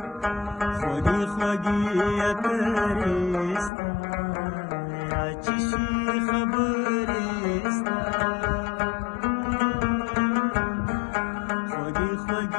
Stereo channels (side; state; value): right; drops out; at 3.7 s